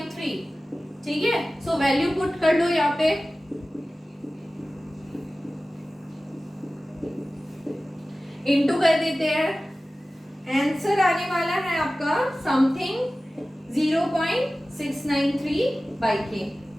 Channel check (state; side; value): normal; both; correlation 0.96